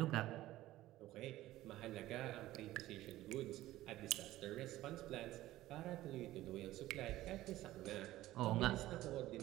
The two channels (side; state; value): left; quieter; 15.7 dB